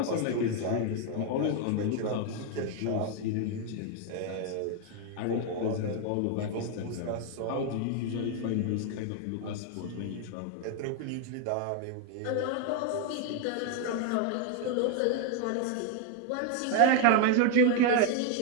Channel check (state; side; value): different; both; correlation 0.01